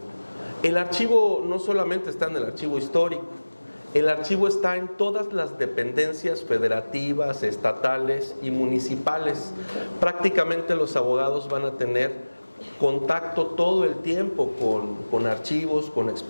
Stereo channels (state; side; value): inverted; both; correlation -1.00